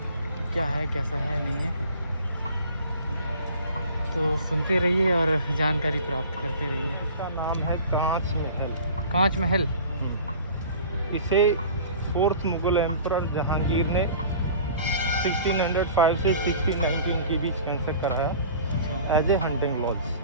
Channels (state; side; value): inverted; both; correlation -0.44